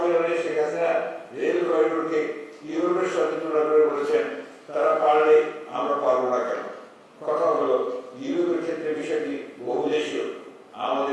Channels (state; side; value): identical; both; correlation 1.00